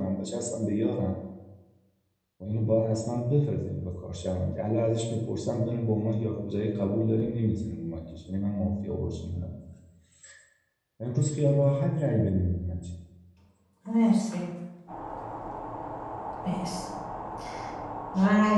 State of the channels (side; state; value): both; identical; correlation 1.00